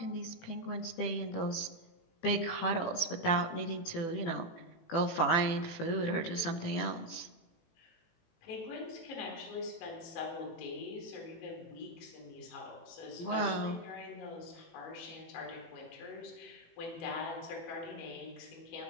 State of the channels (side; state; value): right; late; 18 ms